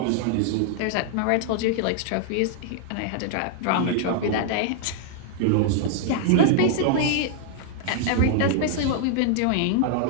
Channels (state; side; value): different; both; correlation 0.00